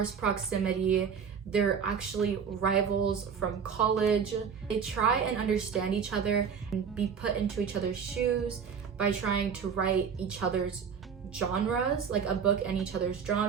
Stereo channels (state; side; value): quieter; left; 6.8 dB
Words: proximity. They're actually rivals from college. They try and understand each other and be put into each other's shoes by trying to write each other's genres, like a book in each other's